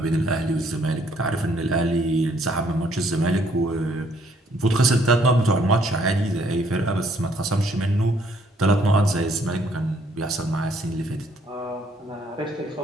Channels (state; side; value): normal; both; correlation 0.66